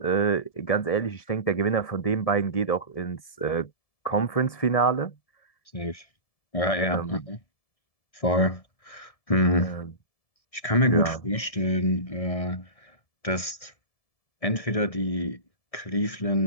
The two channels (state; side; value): late; right; 1.7 ms